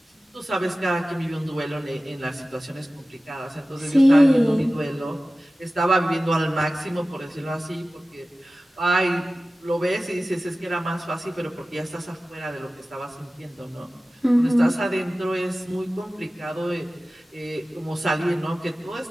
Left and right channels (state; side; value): normal; both; correlation 0.96